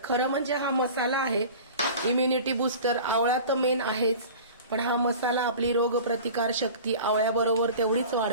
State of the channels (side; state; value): both; inverted; correlation -0.39